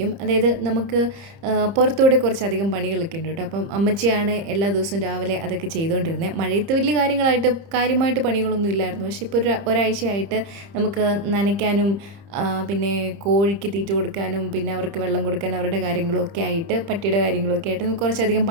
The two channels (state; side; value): late; left; 30 ms